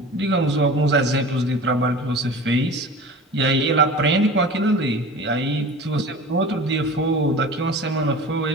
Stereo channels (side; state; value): both; normal; correlation 0.37